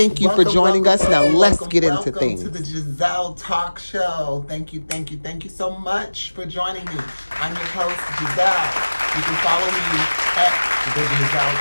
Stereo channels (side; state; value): both; inverted; correlation -1.00